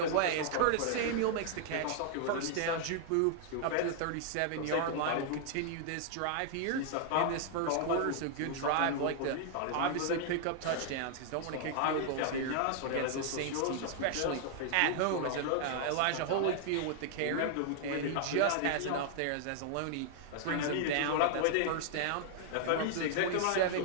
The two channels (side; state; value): both; different; correlation 0.00